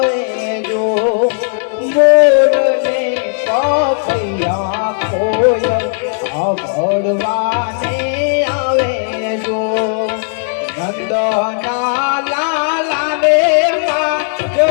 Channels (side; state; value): right; silent; digital silence